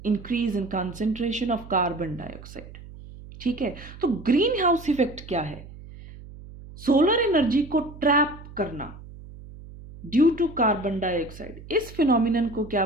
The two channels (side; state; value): right; noise; hum, 16 dB below the sound